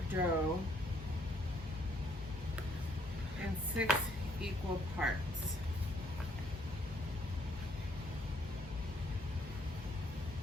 dough in 6 equal parts.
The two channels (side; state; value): both; normal; correlation 0.68